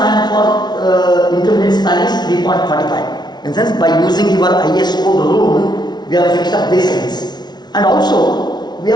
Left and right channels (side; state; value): right; late; 0.20 ms